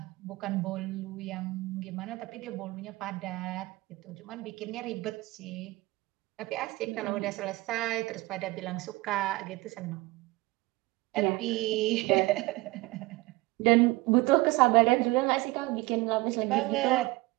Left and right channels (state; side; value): quieter; left; 21.3 dB